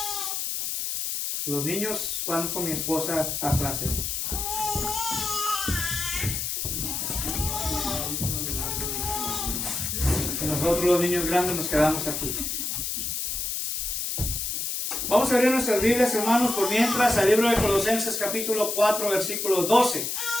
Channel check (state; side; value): noise; left; hiss, 2 dB below the sound